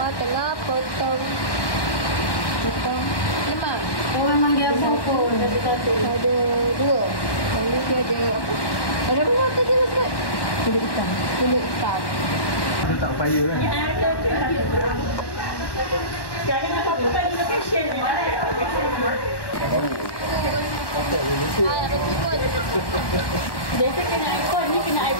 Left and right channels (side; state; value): right; late; 1.1 ms